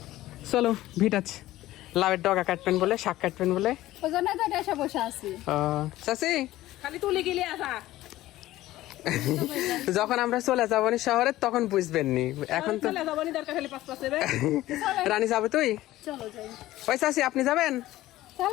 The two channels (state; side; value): quieter; right; 15.8 dB